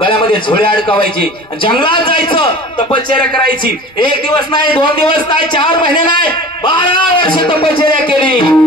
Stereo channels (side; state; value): both; normal; correlation 0.40